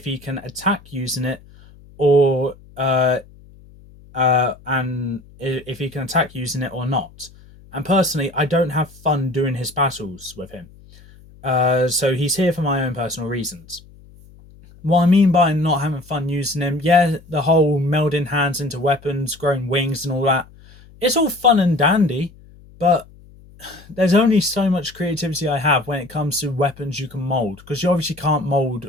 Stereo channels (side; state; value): left; noise; hum, 24 dB below the sound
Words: he can attack using it or and if he can attack using it or not. And personally, I don't have fun doing his battles with him. So he's here for my own personal reasons. What I mean by not having fun using him, yeah, the whole melding hands into weapons, growing wings and all that, it's all fun and dandy, but there's only so much creativity I have when it comes to weapons you can mold, because you obviously can't mold